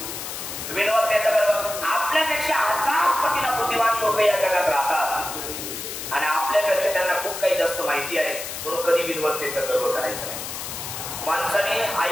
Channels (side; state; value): left; noise; hiss, 7 dB below the sound